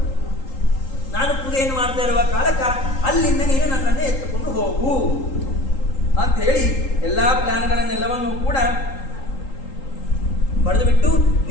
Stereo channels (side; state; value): right; late; 3.8 ms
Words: ನಾನು ಪೂಜೆಯನ್ನು ಮಾಡ್ತಾ ಇರುವ ಕಾಲಕ್ಕ ಅಲ್ಲಿಂದ ನೀನು ನನ್ನನ್ನು ಎತ್ತುಕೊಂಡು ಹೋಗು ಅಂತ ಹೇಳಿ ಎಲ್ಲ ಪ್ಲಾನ್ಗಳನ್ನೆಲ್ಲವನ್ನೂ ಕೂಡ ಬರೆದು ಬಿಟ್ಟು